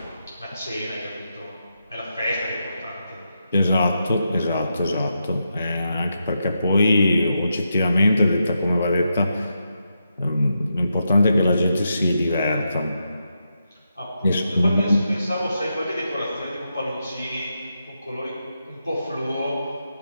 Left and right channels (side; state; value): both; inverted; correlation -0.85